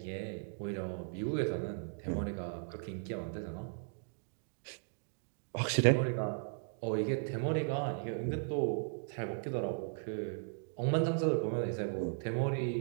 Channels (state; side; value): silent; left; digital silence